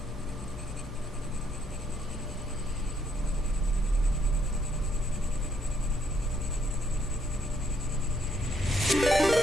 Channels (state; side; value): normal; both; correlation 0.71